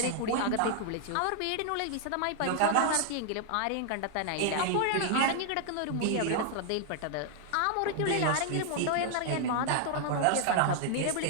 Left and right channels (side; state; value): both; different; correlation 0.00